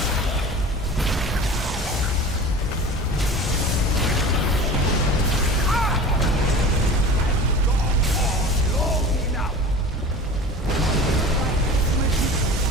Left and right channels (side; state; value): both; normal; correlation 0.37